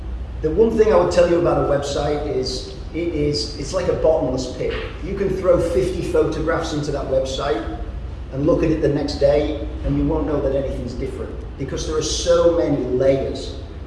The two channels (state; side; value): identical; both; correlation 1.00